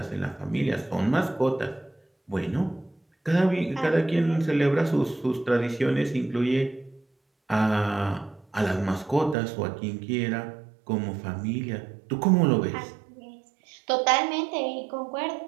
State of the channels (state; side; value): drops out; left; at 9.3 s